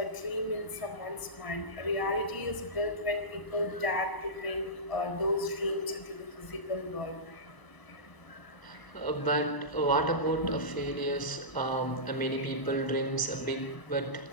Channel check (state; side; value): late; right; 1.0 ms